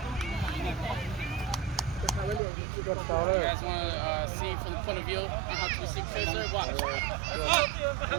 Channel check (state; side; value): drops out; left; at 2.4 s